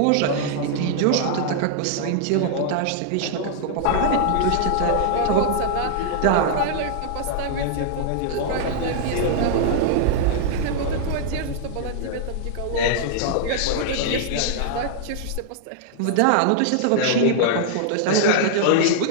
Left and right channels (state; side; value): different; both; correlation -0.01